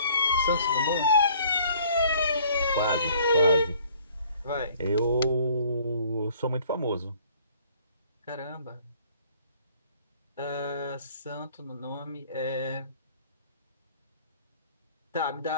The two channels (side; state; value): both; inverted; correlation -0.57